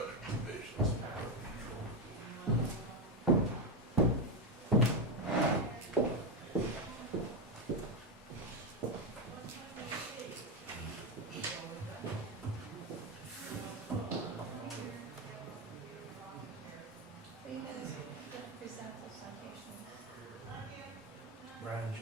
revisions. Are you gonna present the citations? Brian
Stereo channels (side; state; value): both; normal; correlation 0.10